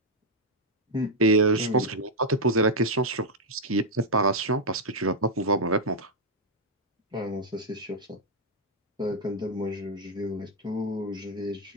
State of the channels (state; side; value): normal; both; correlation -0.02